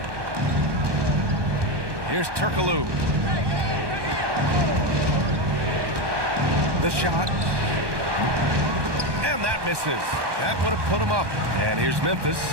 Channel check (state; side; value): late; left; 1.2 ms